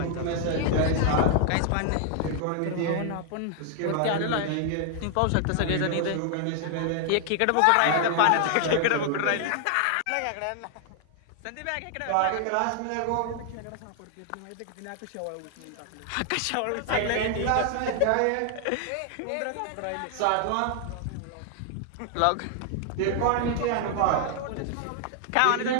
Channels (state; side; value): different; both; correlation 0.00